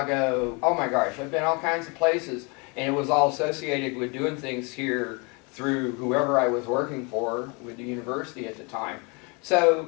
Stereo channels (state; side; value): quieter; right; 31.0 dB